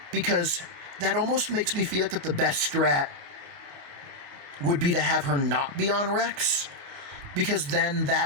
because that almost makes me feel like that the best strat would be to have her not be on Rex, because then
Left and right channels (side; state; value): left; late; 28 ms